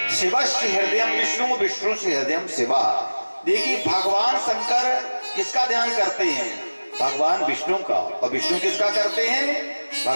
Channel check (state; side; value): inverted; both; correlation -1.00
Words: शिवस्य हृदयम विष्णु विष्णु से हृदयम शिवा। देखिए भगवान शंकर किसका ध्यान करते हैं? भगवान विष्णु का। और विष्णु किसका करते हैं?